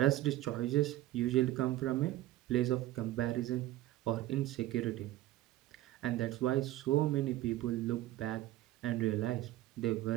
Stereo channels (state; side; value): quieter; left; 15.3 dB